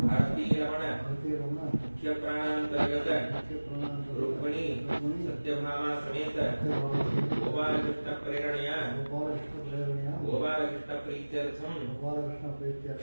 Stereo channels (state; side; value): inverted; both; correlation -1.00